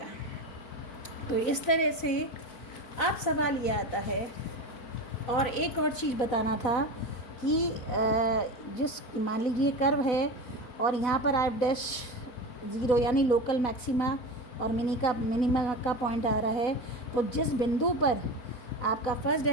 तो इस तरह से अब सवाल ये आता है, और एक और चीज़ बताना था कि जिस मान लीजिए कर्व है और यहाँ पर f डैश 0 यानी लोकल मैक्सिमा और मिनिमा का पॉइंट आ रहा है, तो जिस बिंदु पर आपका फर्स्ट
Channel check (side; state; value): right; late; 4.0 ms